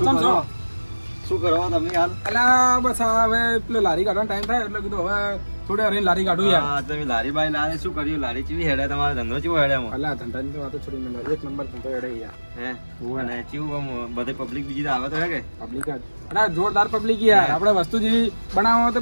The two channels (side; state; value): both; inverted; correlation -1.00